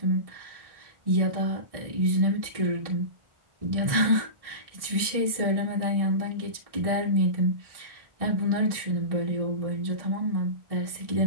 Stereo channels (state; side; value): late; left; 1.6 ms